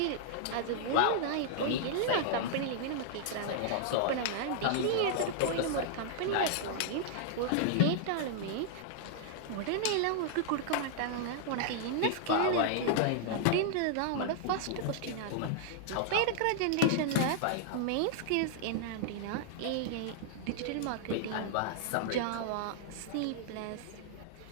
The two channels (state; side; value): different; both; correlation -0.01